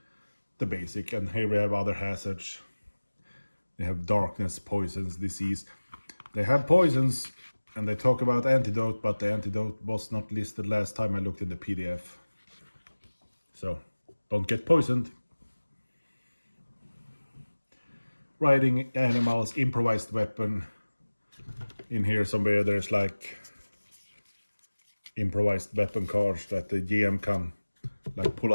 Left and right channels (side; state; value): both; inverted; correlation -1.00